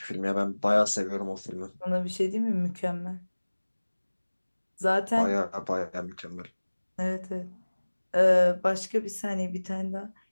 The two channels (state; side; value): inverted; both; correlation -1.00